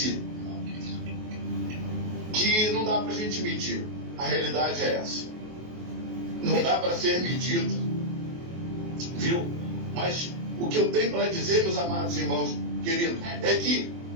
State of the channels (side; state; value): left; late; 23 ms